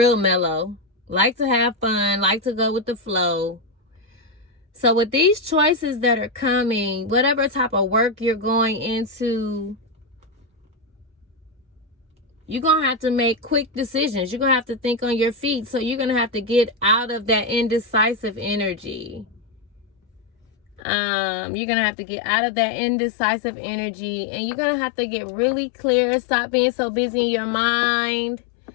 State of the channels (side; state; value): right; drops out; at 20.8 s